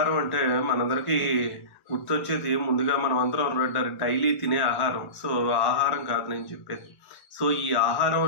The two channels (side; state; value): right; late; 1.3 ms